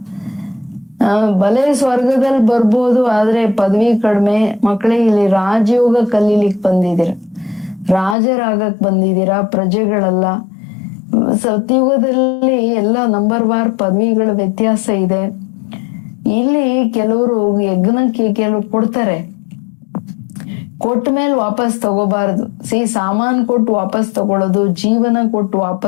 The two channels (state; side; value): drops out; right; at 8.2 s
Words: ಬಲೆ ಸ್ವರ್ಗದಲ್ಲಿ ಬರ್ಬೋದು, ಆದ್ರೆ ಪದವಿ ಕಡಿಮೆ. ಮಕ್ಕಳಿಗೆ ಇಲ್ಲಿ ರಾಜಯೋಗ ಕಲೀಲಿಕ್ ಬಂದಿದ್ದೀರ, ರಾಜರಾಗಕ್ ಬಂದಿದ್ದೀರಾ, ಪ್ರಜೆಗಳಲ್ಲ. ಸತ್ಯುಗದಲ್ಲಿ ಎಲ್ಲ ನಂಬರ್ ವಾರ್ ಪದವಿಗಳ ವ್ಯತ್ಯಾಸ ಇದೆ. ಇಲ್ಲಿ ಕೆಲವರು ಯಜ್ಞಕ್ಕೆ ಕೆಲವು ಕೊಡ್ತಾರೆ, ಕೊಟ್ಟ ಮೇಲೆ ವಾಪಸ್ ತಗೋಬಾರದು. ಸಾಮಾನ್ ಕೊಟ್ಟು ವಾಪಸ್ ತಗೊಳ್ಳೋದು, ಜೀವನ ಕೊಟ್ಟು